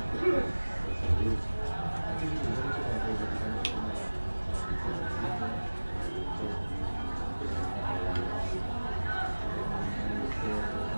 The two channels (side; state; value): both; inverted; correlation -1.00